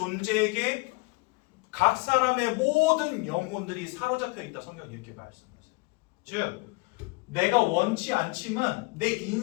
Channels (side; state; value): right; quieter; 27.3 dB